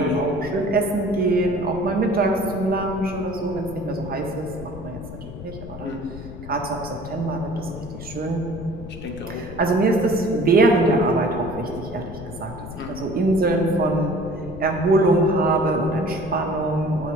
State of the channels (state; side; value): noise; left; rumble, 12 dB below the sound